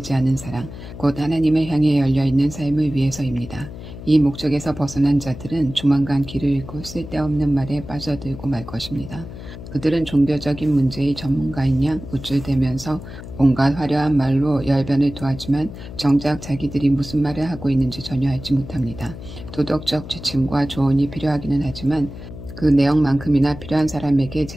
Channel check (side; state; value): left; noise; hum, 13 dB below the sound